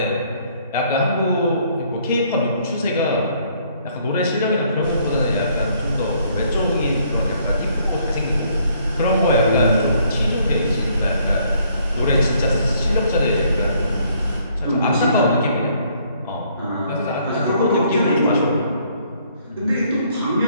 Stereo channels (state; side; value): inverted; both; correlation -0.65